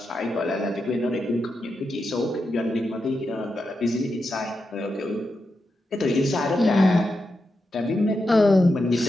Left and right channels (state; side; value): normal; both; correlation 0.87